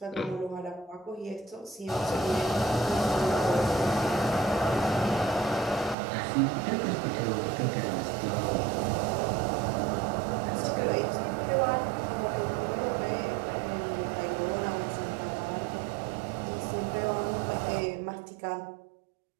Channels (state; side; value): drops out; left; at 6.0 s